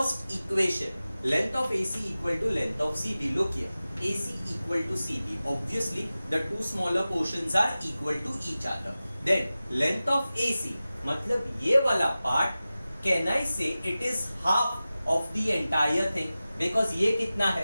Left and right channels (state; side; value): inverted; both; correlation -0.96